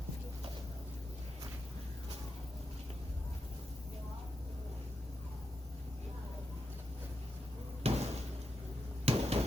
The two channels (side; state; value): both; normal; correlation 0.86